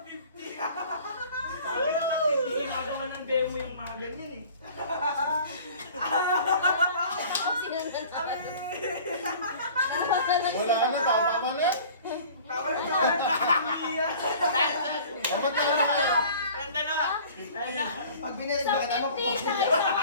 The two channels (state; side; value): inverted; both; correlation -0.46